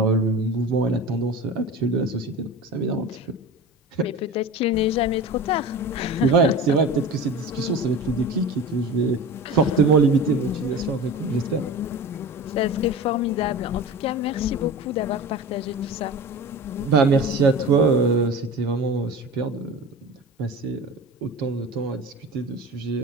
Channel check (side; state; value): both; normal; correlation 0.33